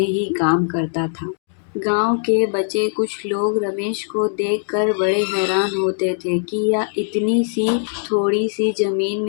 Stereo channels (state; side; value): silent; right; digital silence